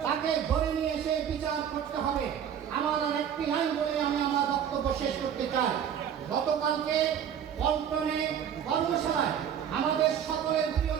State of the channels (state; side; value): quieter; left; 8.8 dB